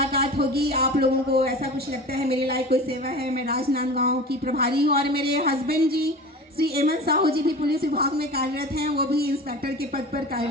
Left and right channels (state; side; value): normal; both; correlation 0.35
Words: होगी। आप लोगों को ऐसा कुछ लगता है मेरे लायक कोई सेवा है, मैं राजनांदगांव की प्रभारी हूँ और मेरे हस्बैंड जी श्री एमन साहू जी भी पुलिस विभाग में कार्यरत हैं, वो भी इंस्पेक्टर के पद पर